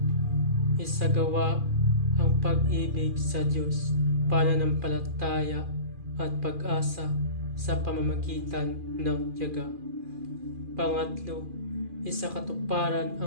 isagawa ang pag-ibig sa Diyos, pananampalataya at pag-asa sa pamamagitan ng tiyaga. Pangatlo, isakatuparan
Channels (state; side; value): late; left; 2.4 ms